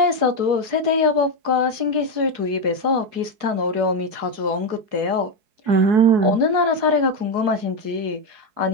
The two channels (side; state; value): left; late; 4.7 ms